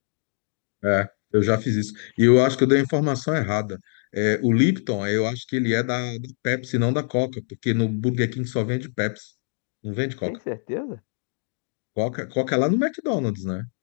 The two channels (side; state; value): right; silent; 57 dB below the other